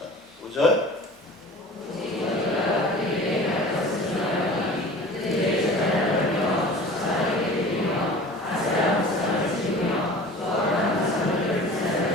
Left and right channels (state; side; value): normal; both; correlation 0.41